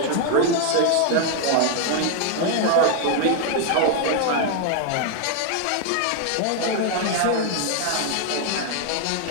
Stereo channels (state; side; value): different; both; correlation 0.00